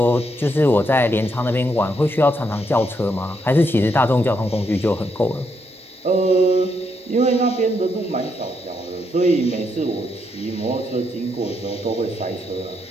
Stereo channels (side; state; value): both; normal; correlation 0.78